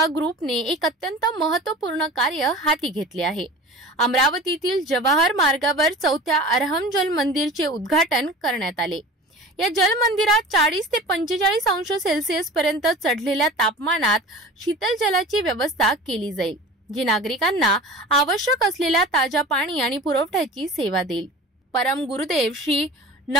ग्रुपने एक अत्यंत महत्त्वपूर्ण कार्य हाती घेतले आहे। अमरावतीतील जवाहर मार्गावर 4थ्या अरहम जल मंदिरचे उद्घाटन करण्यात आले। या जल मंदिरात 40 ते 45 अंश सेल्सिअस पर्यंत चढलेल्या तापमानात शीतल जलाची व्यवस्था केली जाईल, जी नागरिकांना आवश्यक असलेल्या ताजा पाणी आणि पुरवठ्याची सेवा देईल। परम गुरुदेव श्री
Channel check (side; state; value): both; normal; correlation 0.37